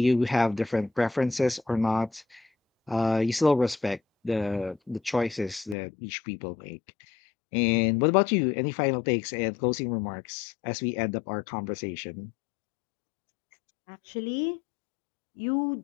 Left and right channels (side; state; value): right; drops out; at 5.8 s